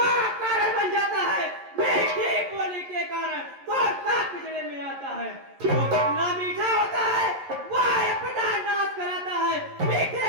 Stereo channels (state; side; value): late; left; 11 ms